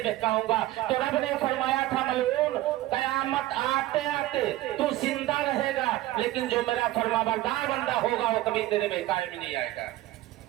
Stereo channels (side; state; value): left; quieter; 16.2 dB